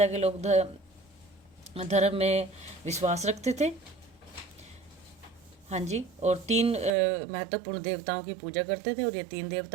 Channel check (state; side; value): drops out; left; at 6.9 s